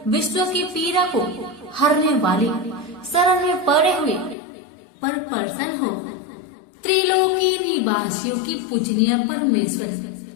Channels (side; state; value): right; drops out; at 4.4 s